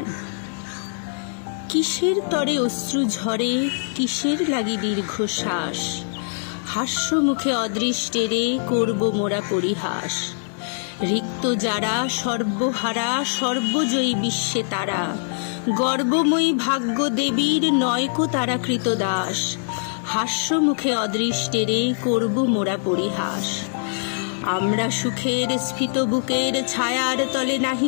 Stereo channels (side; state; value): right; silent; digital silence